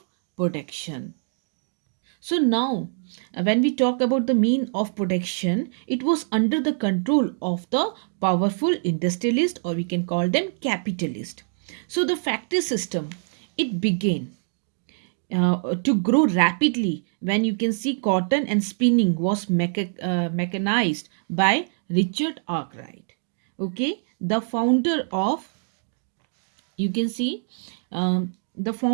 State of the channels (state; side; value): silent; left; digital silence